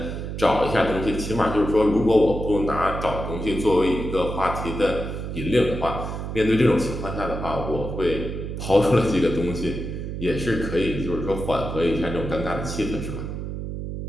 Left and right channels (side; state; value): right; noise; hum, 6 dB below the sound